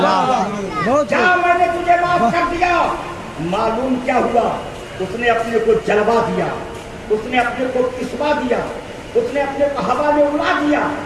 جاؤ میں نے تجھے معاف کر دیا. معلوم کیا ہوا؟ اس نے اپنے کو جلوا دیا, اس نے اپنے کو کسوا دیا, اس نے اپنے کو ہوا میں اڑا دیا,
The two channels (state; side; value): identical; both; correlation 1.00